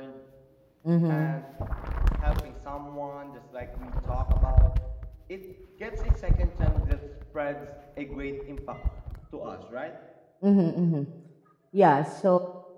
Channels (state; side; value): identical; both; correlation 1.00